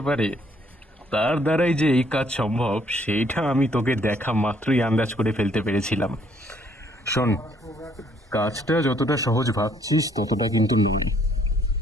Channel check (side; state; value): both; normal; correlation 0.65